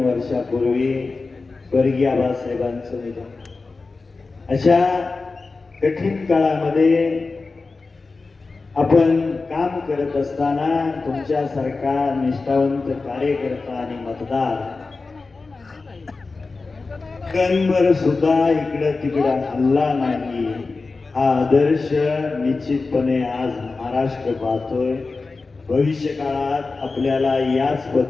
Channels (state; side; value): quieter; right; 3.9 dB